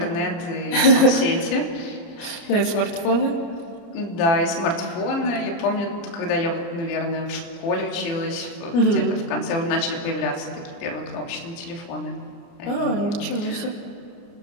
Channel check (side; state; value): right; late; 29 ms